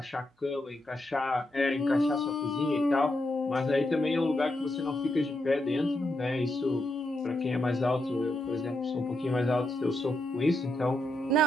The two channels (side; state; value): both; normal; correlation 0.83